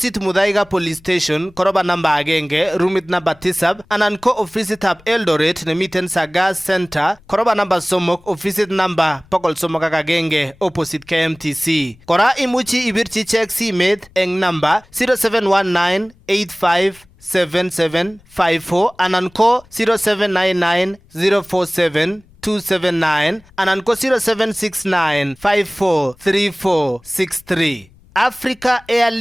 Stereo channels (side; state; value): left; noise; rumble, 28 dB below the sound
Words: Mudavadi Police Station koroba namba agenge roomit namba 7 anan ko ofisitab Eldoret nemiten Sagas Center koroba namba somok ofisit namba 301 opposite KMTC. Kora imuchi ibirchi check simet eng namba 0719857754 anan ko 0799047279 anan ko 0769543463. Africa